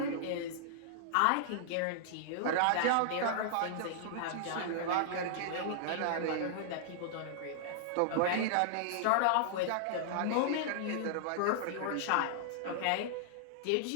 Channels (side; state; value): both; different; correlation -0.01